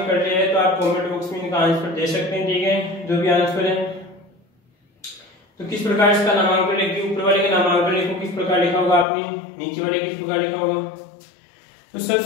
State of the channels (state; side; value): drops out; right; at 9.1 s